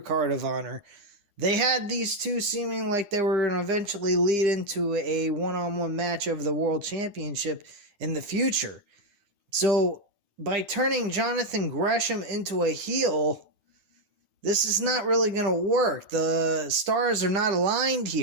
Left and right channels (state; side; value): late; left; 9.9 ms